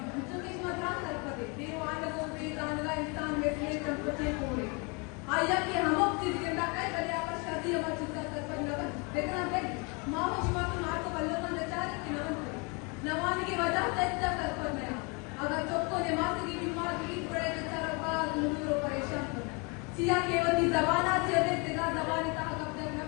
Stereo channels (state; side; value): quieter; right; 31.5 dB